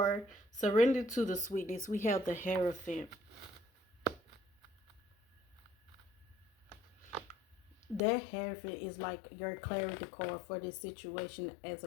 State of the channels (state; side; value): drops out; right; at 8.0 s